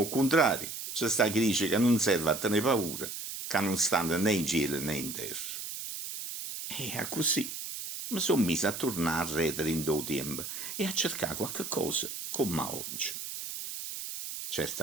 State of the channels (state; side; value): noise; right; hiss, 7 dB below the sound